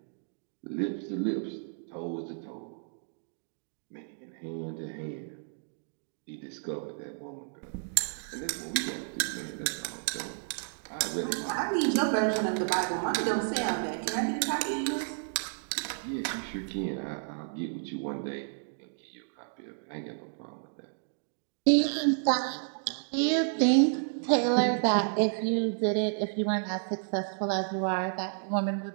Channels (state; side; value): silent; left; digital silence